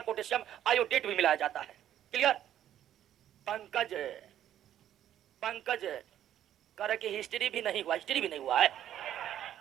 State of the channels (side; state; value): left; quieter; 11.2 dB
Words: पोटेशियम आयोडेट भी मिलाया जाता है। क्लियर? पंकज कह रहे कि हिस्ट्री भी नहीं हुआ है,